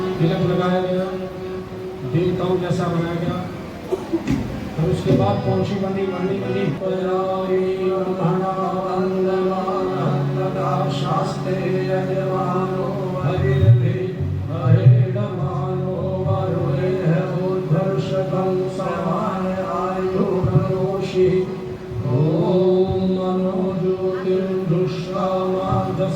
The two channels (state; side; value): identical; both; correlation 1.00